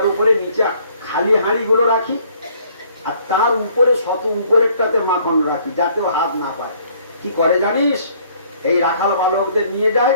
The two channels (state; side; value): inverted; both; correlation -0.61